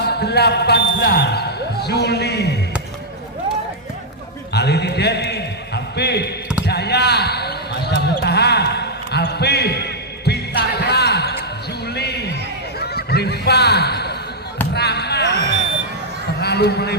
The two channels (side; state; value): both; normal; correlation -0.06